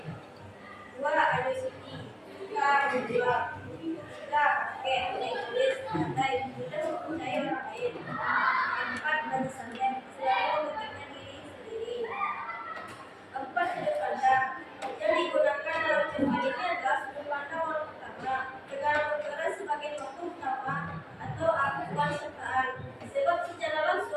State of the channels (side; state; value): both; identical; correlation 1.00